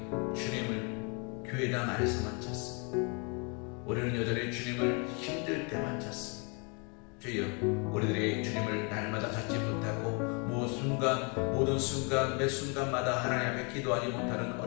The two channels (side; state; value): right; quieter; 34.3 dB